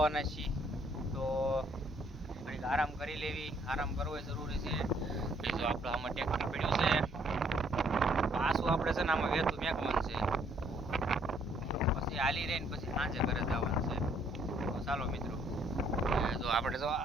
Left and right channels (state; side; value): normal; both; correlation 0.66